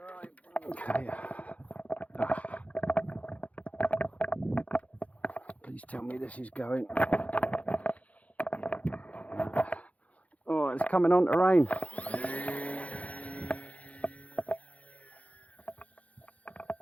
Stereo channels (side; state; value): right; late; 0.067 ms